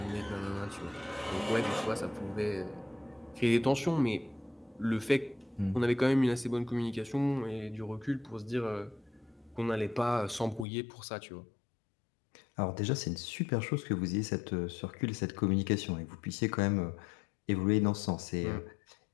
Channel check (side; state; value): right; drops out; at 10.7 s